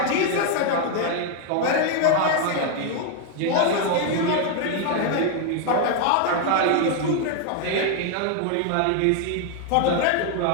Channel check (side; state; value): both; different; correlation 0.00